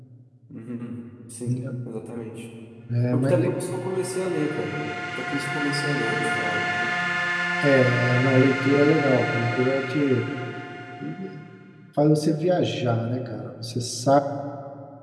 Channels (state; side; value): identical; both; correlation 1.00